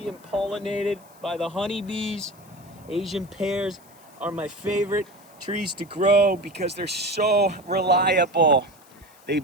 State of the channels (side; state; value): left; noise; hiss, 27 dB below the sound